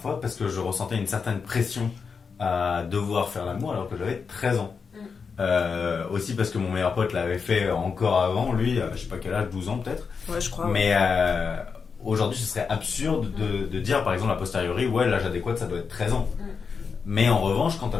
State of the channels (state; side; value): quieter; right; 5.5 dB